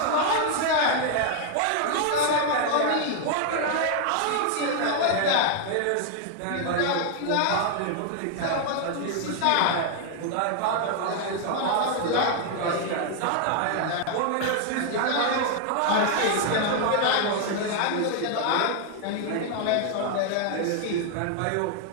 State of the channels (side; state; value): both; different; correlation 0.00